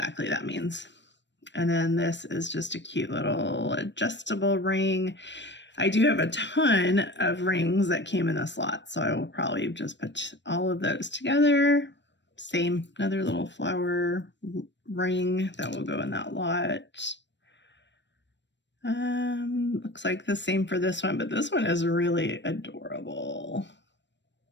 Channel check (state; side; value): late; right; 0.53 ms